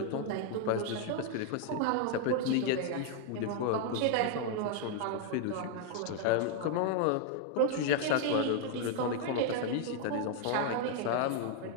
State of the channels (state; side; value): different; both; correlation 0.00